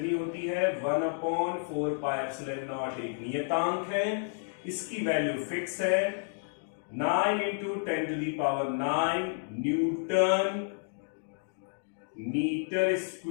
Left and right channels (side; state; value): right; silent; digital silence